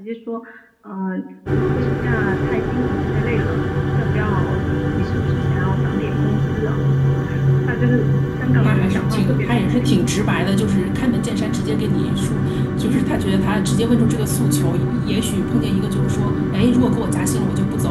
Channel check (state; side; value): identical; both; correlation 1.00